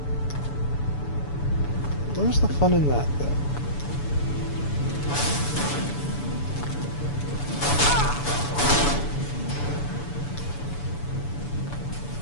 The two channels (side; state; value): right; late; 7.0 ms